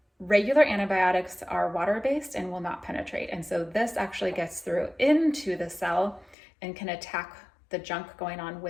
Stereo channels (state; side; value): drops out; right; at 6.4 s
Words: regular antibiotics are water-based and will not penetrate. And so this actually gets through into the cell and can attack the junk going on